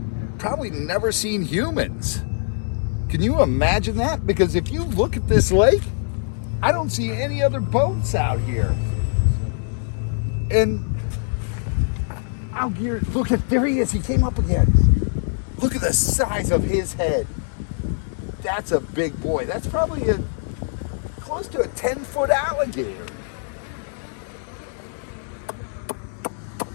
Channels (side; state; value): right; silent; 63 dB below the other